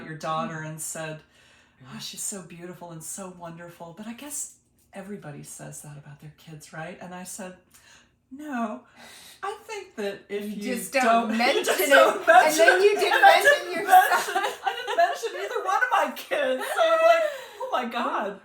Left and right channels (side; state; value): both; identical; correlation 1.00